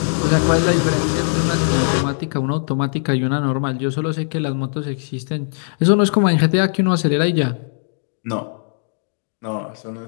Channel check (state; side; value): silent; right; 62 dB below the other